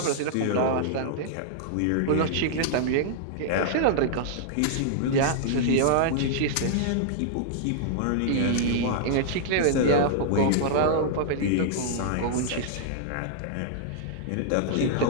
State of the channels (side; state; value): both; different; correlation -0.01